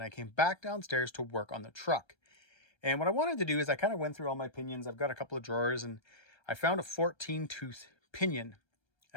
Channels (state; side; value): late; right; 1.3 ms